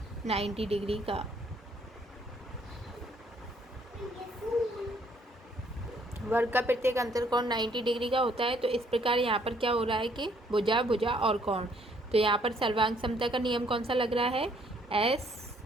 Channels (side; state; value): both; normal; correlation 0.65